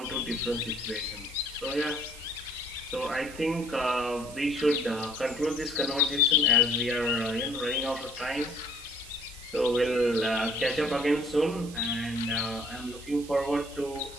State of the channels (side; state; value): right; noise; hiss, 17 dB below the sound